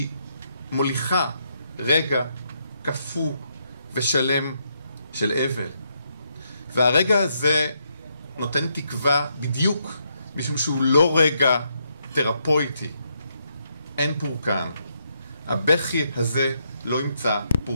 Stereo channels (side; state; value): both; inverted; correlation -0.78